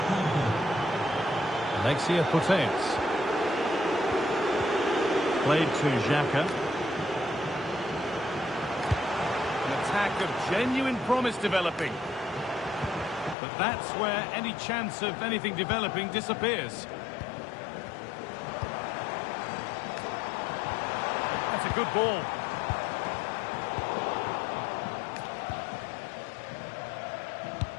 Alexia Puteas. Played to Xhaka. An attack of genuine promise developing. But that's where any chance of anything developing disappears. That's a good ball.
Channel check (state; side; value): drops out; right; at 13.4 s